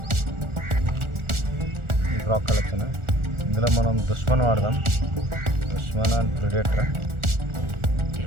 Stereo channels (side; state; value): left; late; 1.4 ms